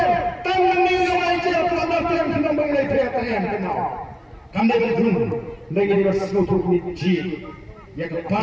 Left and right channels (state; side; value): identical; both; correlation 1.00